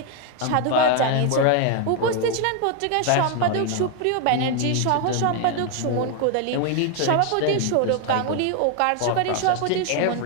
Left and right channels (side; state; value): both; different; correlation 0.01